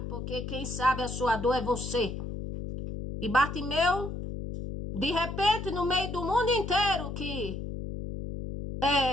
porque quem sabe a sua dor é você. E Bartimeu, de repente, no meio do mundo inteiro que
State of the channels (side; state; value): left; noise; hum, 6 dB below the sound